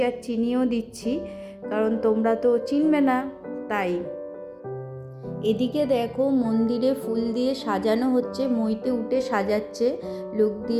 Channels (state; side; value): identical; both; correlation 1.00